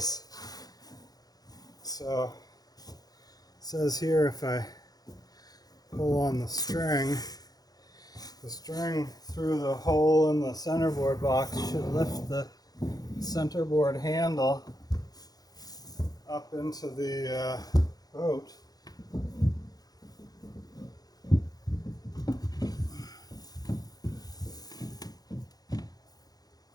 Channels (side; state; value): right; late; 0.19 ms